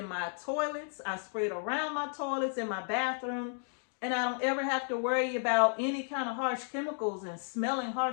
my toilets. I spray it around my toilets, in my bathroom. And I don't ever have to worry about any kind of harsh chemicals and smelling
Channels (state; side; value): silent; right; 56 dB below the other